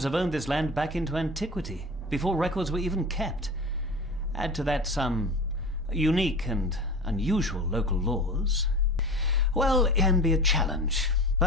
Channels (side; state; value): both; normal; correlation 0.33